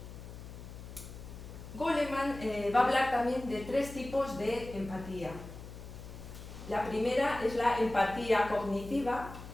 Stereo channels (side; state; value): left; noise; hum, 13 dB below the sound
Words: Goleman va a hablar también de 3 tipos de empatía. La primera es la empatía cognitiva